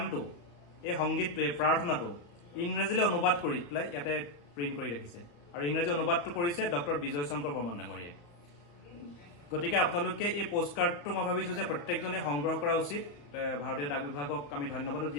এই সংগীতটো এই প্ৰাৰ্থনাটো ইংৰাজীলৈ অনুবাদ কৰি পেলাই ইয়াতে প্ৰিণ্ট কৰি ৰাখিছে আৰু ইংৰাজী অনুবাদটো কৰিছে ডক্টৰ বিজয় শংকৰ বৰ্মন ডাঙৰীয়াই গতিকে আপোনালোকে এই পোষ্টকাৰ্ডটো মই ভাবিছো যে প্ৰত্যেকজনে সংগ্ৰহ কৰা উচিত ভাৰতীয় ডাক বিভাগক আমি ধন্যবাদ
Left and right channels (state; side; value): late; right; 34 ms